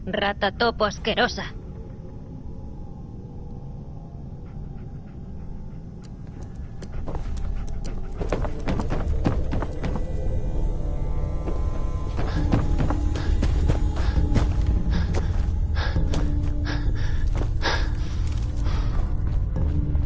rata topo asquerosa.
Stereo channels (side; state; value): both; identical; correlation 1.00